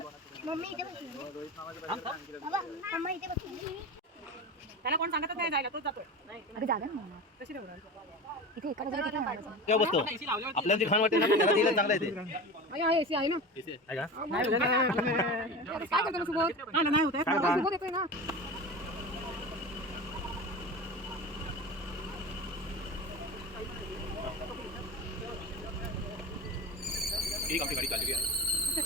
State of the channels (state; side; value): normal; both; correlation 0.29